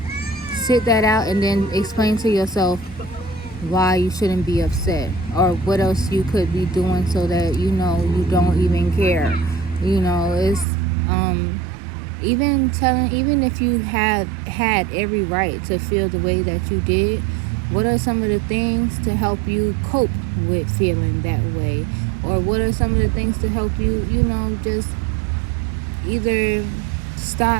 sit that out and then explain to yourself why you shouldn't be upset or what else you could be doing so that you don't even care. It's even if you had every right to feel the way that you did, what are some of the things to help you cope with feeling that way? Or what are some of the things to help you, just either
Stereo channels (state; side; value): drops out; left; at 10.7 s